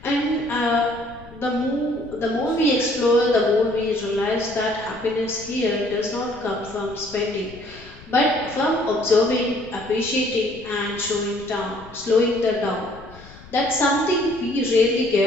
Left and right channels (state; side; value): noise; left; rumble, 20 dB below the sound